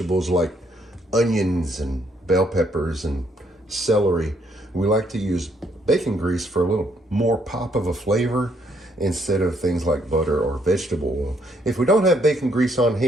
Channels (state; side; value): normal; both; correlation 0.71